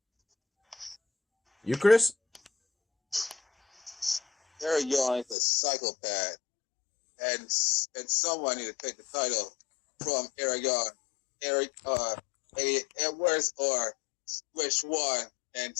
You, Chris? Eric Young is a psychopath, and someone need to take the title from Eric Young. Eddie Edwards or which one, and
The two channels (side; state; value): right; drops out; at 5.4 s